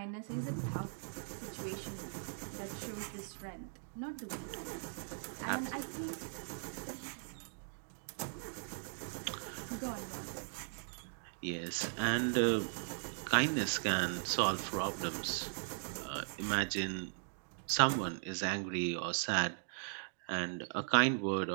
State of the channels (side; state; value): left; silent; digital silence